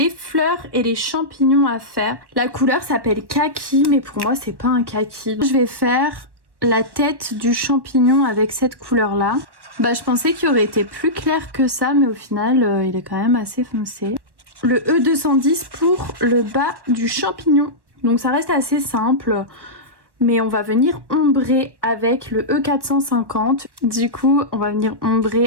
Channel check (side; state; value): left; late; 1.1 ms